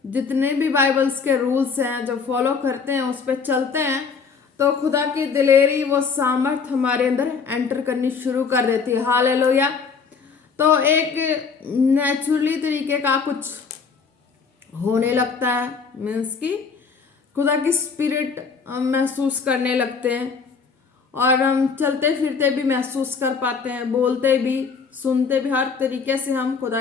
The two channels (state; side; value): quieter; right; 5.5 dB